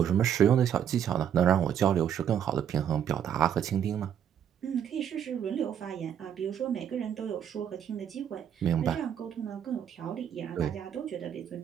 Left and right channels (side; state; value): left; quieter; 9.1 dB